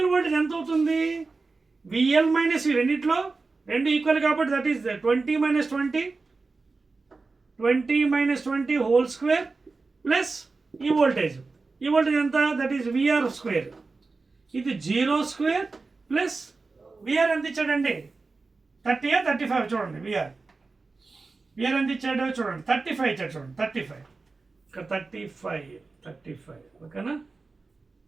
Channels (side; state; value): left; quieter; 3.9 dB